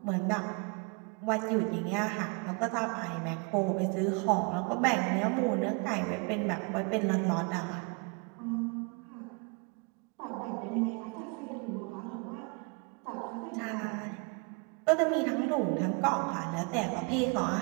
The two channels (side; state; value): left; quieter; 32.2 dB